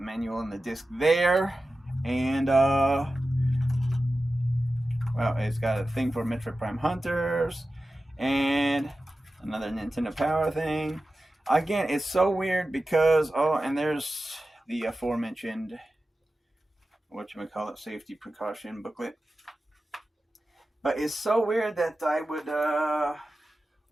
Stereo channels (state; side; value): normal; both; correlation 0.94